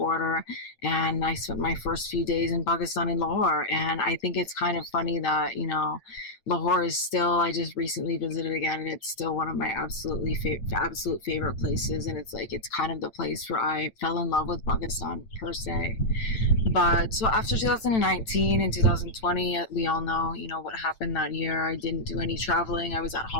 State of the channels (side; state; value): right; late; 9.0 ms